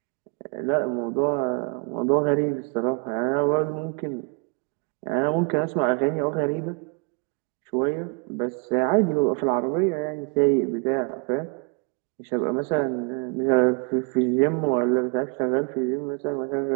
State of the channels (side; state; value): left; quieter; 34.7 dB